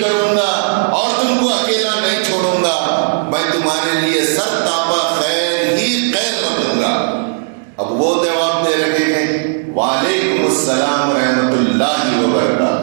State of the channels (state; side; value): silent; left; digital silence